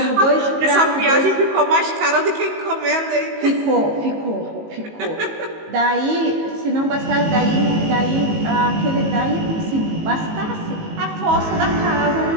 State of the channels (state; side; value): late; left; 19 ms